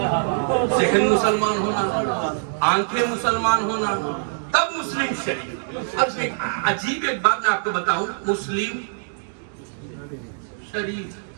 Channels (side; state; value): left; silent; digital silence